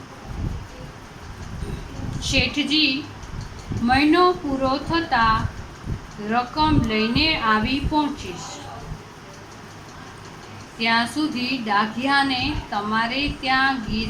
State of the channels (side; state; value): both; identical; correlation 1.00